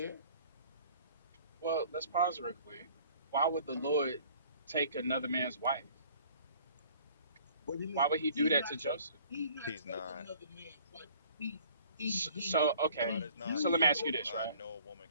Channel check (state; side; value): inverted; both; correlation -0.53